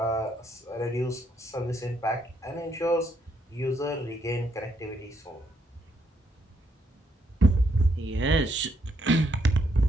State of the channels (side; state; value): both; normal; correlation 0.75